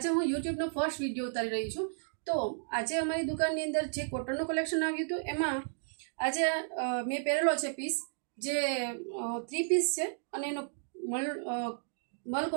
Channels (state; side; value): silent; left; digital silence